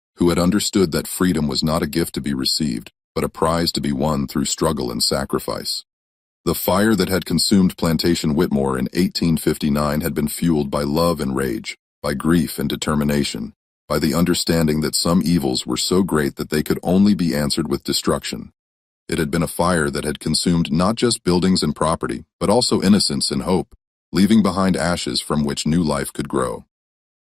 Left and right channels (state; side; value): quieter; right; 3.9 dB